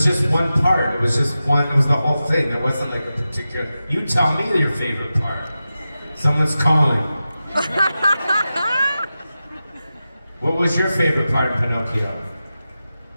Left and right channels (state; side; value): inverted; both; correlation -0.93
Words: just one part. It was just one, it was the whole thing. There wasn't like a particular, you tell me your favorite part. Someone's calling. What was your favorite part of Pinocchio?